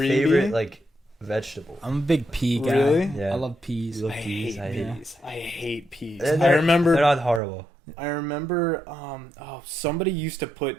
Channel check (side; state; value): left; drops out; at 7.4 s